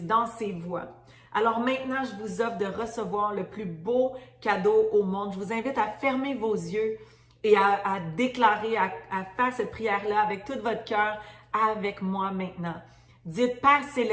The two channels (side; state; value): both; identical; correlation 1.00